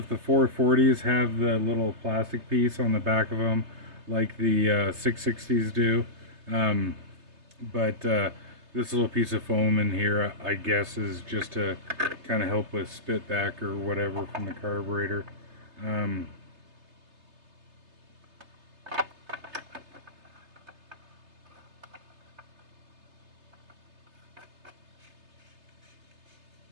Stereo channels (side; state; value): left; late; 3.3 ms